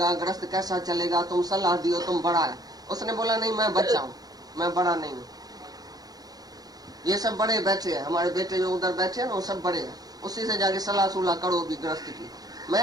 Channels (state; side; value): late; left; 0.19 ms